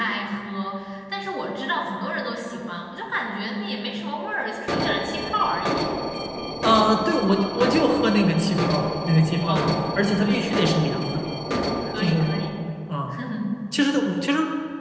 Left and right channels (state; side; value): identical; both; correlation 1.00